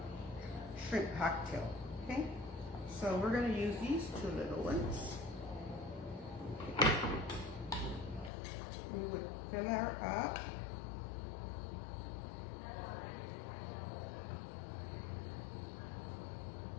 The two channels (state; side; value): drops out; right; at 8.3 s